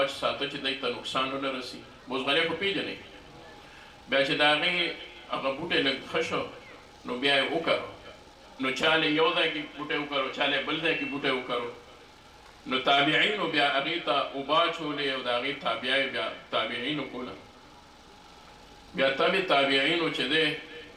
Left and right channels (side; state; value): both; identical; correlation 1.00